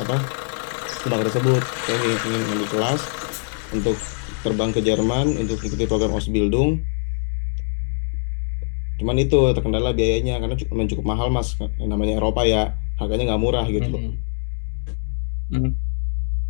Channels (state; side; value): silent; right; digital silence